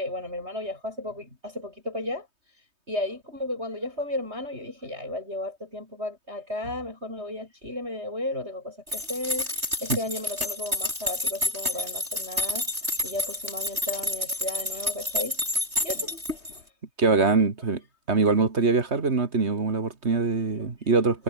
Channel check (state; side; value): late; left; 3.2 ms